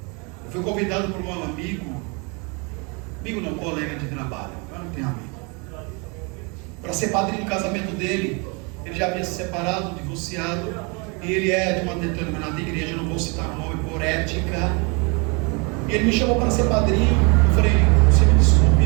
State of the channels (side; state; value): left; quieter; 31.3 dB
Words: Eu fui convidado por um amigo não, colega de trabalho, eu não tenho amigo, para ser padrinho do casamento dele. Ele já havia se separado, divorciado, e ele é de uma determinada igreja, eu não vou citar o nome por ética. E ele me chamou para ser padrinho. Eu falei, você me